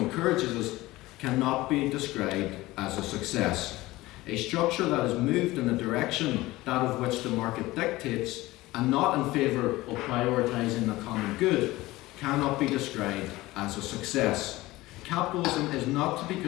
us, cannot be described as a success. A structure that is moved in the direction that of which the market dictates, and not in favour of prioritising the common good, cannot be described as a success. Capitalism is not to be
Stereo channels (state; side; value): quieter; right; 18.8 dB